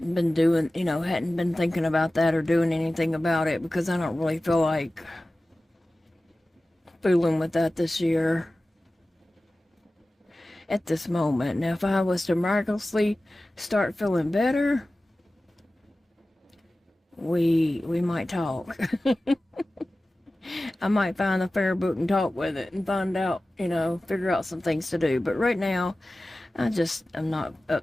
been doing, hadn't been thinking about that or doing anything about it because I don't really feel like fooling with that this year at this moment. Now, if I was to miraculously start feeling better, we might talk. I might find the fair book and talk with it and find out, figure out some things to do. But right now, I'm not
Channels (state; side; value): normal; both; correlation 0.96